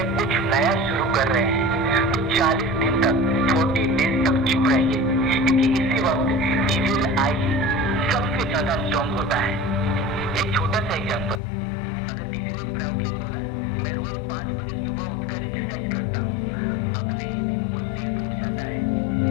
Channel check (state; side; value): drops out; right; at 11.4 s